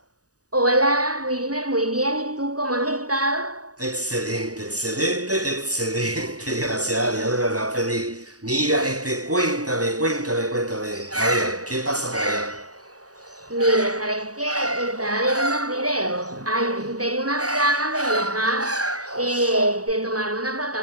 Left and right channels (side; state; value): left; late; 0.67 ms